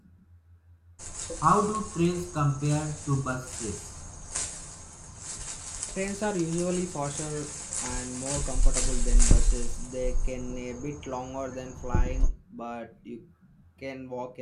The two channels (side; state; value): both; identical; correlation 1.00